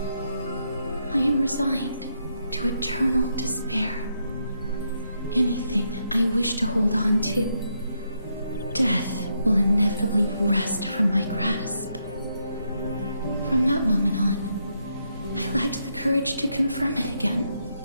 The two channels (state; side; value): inverted; both; correlation -0.79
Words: I am resigned to eternal despair. Anything I wish to hold on to, death will inevitably wrest from my grasp. From that moment on, I lacked the courage to confirm it again.